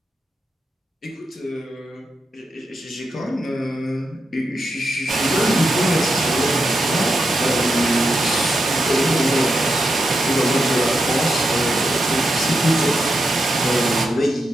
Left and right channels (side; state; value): both; normal; correlation 0.85